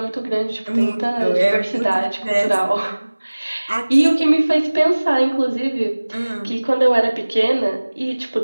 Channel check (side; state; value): both; inverted; correlation -1.00